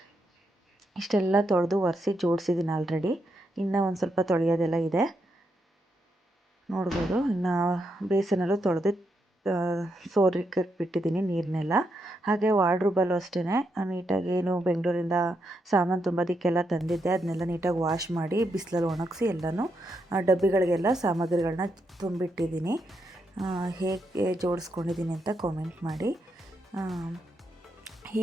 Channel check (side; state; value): both; normal; correlation 0.81